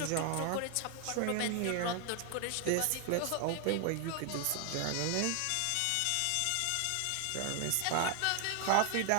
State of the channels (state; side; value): different; both; correlation 0.00